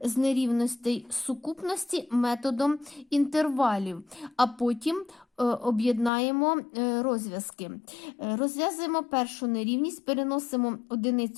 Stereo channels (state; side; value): drops out; right; at 6.1 s